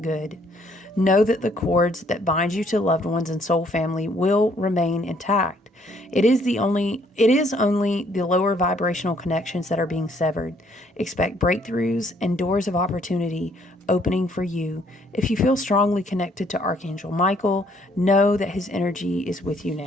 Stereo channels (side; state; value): both; normal; correlation 0.66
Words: good. Know that the cords that bind you to loved ones and soul family will remain intact. It is only the lower vibrational connections that are being severed. Expect breakthroughs and doors of opportunity opening for you. If you feel strongly connected to Archangel Michael, know that his energy is with you